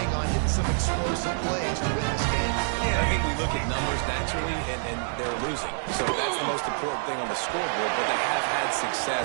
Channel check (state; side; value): silent; left; 60 dB below the other